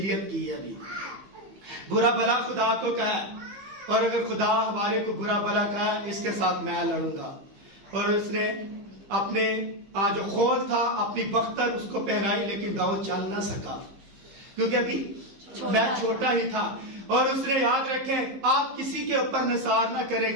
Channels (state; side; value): late; left; 15 ms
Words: کی ہے. ابھی برا بلا خدا کو کہا, اور اگر خدا ہمارے کو برا بلا کہا, اس کے ساتھ میں لڑوں گا. اور اس نے اپنے جو خول تھا اپنی بختر اس کو پہنائی, لیکن داؤد چل نہ سکا کیونکہ ابھی میں چھوٹا ہی تھا. اور اس نے یاد رکھیں آپ کسی کے اوپر نثار نہ کریں,